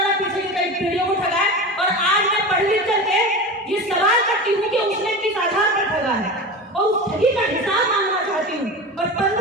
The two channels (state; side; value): normal; both; correlation 0.28